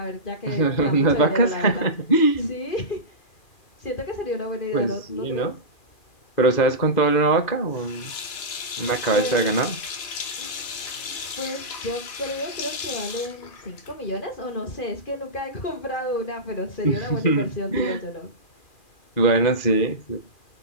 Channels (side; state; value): right; late; 2.4 ms